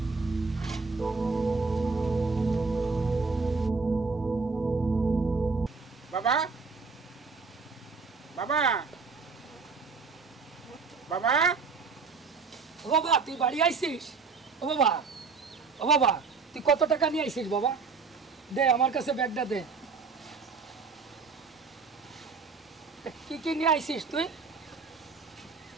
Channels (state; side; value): quieter; left; 4.7 dB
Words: বাবা বাবা বাবা ও বাবা তুই বাড়ি আইছিস? ও বাবা, ও বাবা তুই কত টাকা নিয়ে আইছিস বাবা? দে আমার কাছে ব্যাগটা দে। কি কি নিয়ে আইছিস তুই?